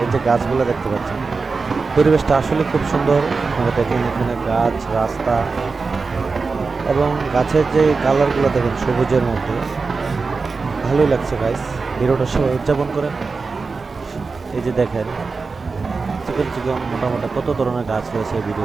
এই যে গাছগুলো দেখতে পাচ্ছেন, পরিবেশটা আসলে খুব সুন্দর। আপনারা দেখেন এখানে গাছ, রাস্তা এবং গাছের যে কালারগুলো দেখেন সবুজের মধ্যে, ভালোই লাগছে গাইস। ভিডিওটা সবাই উদযাপন করেন। এই যে দেখেন চিকন চিকন মোটামুটি কত ধরনের গাছ রয়েছে এই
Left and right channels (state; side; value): quieter; left; 4.4 dB